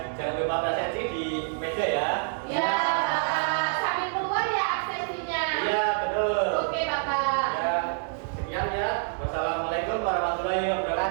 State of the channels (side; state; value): left; silent; digital silence